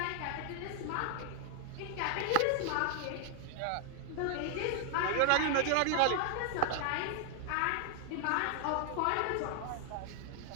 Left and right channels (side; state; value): both; different; correlation 0.00